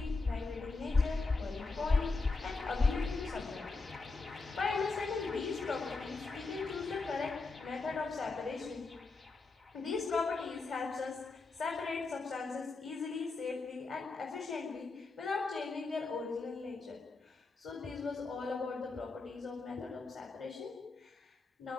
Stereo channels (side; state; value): right; quieter; 3.8 dB